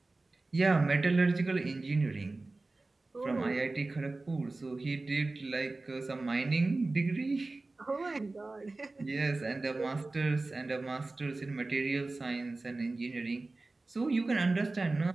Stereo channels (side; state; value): left; quieter; 3.2 dB